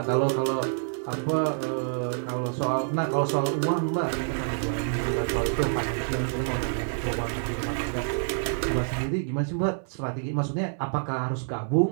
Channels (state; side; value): silent; left; digital silence